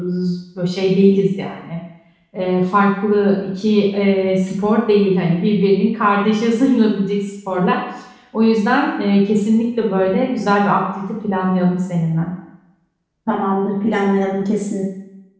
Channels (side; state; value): both; identical; correlation 1.00